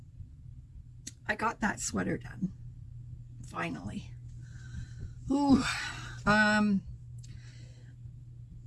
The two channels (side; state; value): both; identical; correlation 1.00